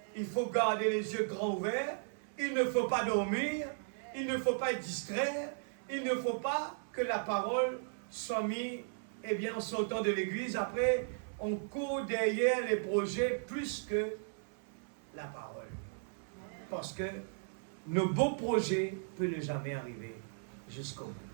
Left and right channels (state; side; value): silent; left; 54 dB below the other